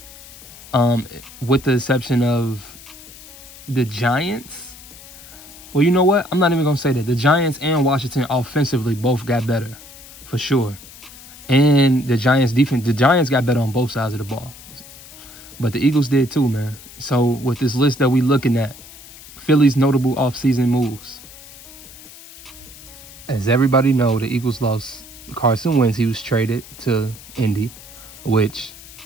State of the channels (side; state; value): left; noise; hiss, 18 dB below the sound